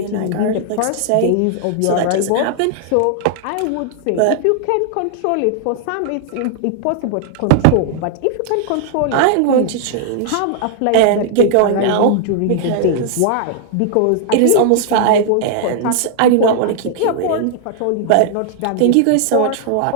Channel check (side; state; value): both; different; correlation 0.00